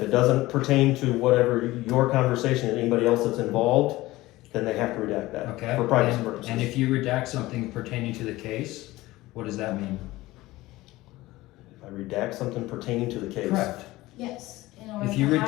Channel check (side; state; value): right; quieter; 18.4 dB